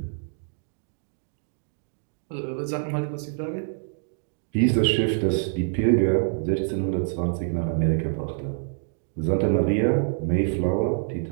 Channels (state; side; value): silent; left; digital silence